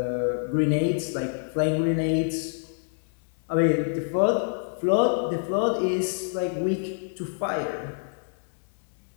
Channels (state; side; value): silent; right; 60 dB below the other